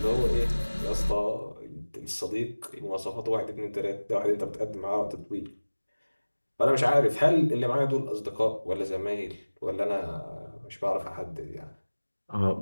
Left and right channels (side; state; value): both; inverted; correlation -1.00